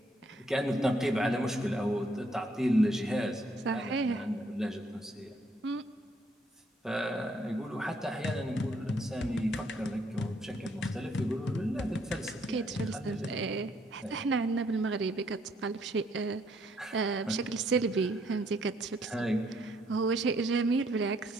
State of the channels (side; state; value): both; normal; correlation 0.69